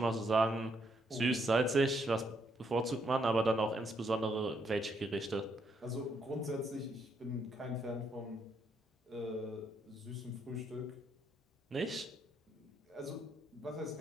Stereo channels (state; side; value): normal; both; correlation 0.74